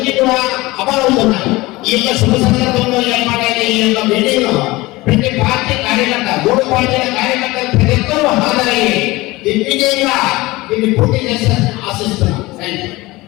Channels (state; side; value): quieter; right; 20.6 dB